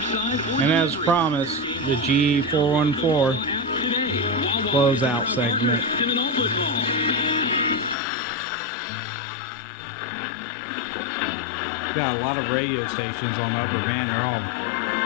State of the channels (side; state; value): right; drops out; at 8.0 s